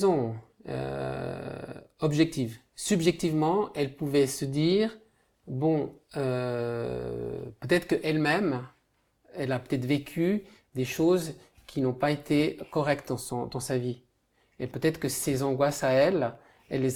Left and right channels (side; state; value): both; identical; correlation 1.00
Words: objective. Subjectivement, elle pouvait se dire, bon, peut-être qu'elle-même, elle a peut-être vécu des choses qui n'ont pas été correctes dans sa vie. Et peut-être que ces angoisses à elle